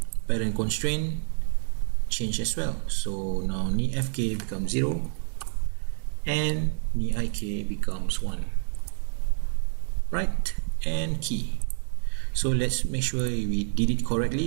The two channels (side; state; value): left; silent; digital silence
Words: parent constraint change as well. So now knee FK becomes 0 and knee IK becomes 1. Right, and key. So let's make sure we did it correctly.